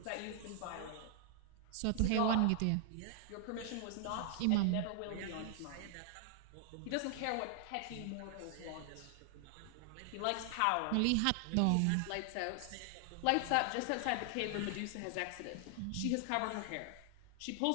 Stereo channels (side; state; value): both; different; correlation 0.00